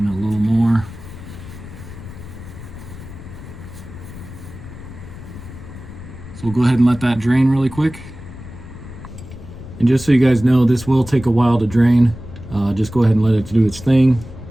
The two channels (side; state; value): left; noise; rumble, 14 dB below the sound